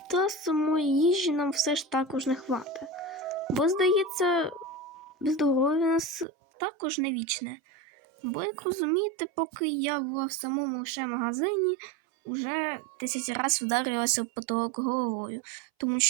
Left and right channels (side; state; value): left; drops out; at 6.2 s